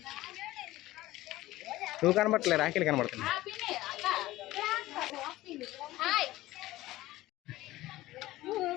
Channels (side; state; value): right; quieter; 17.0 dB